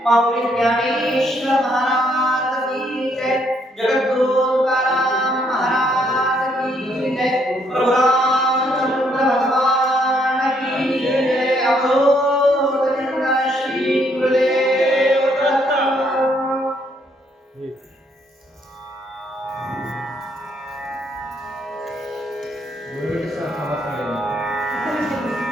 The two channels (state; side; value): normal; both; correlation 0.70